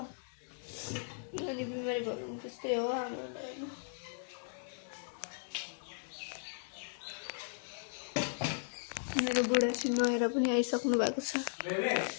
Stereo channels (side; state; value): right; silent; digital silence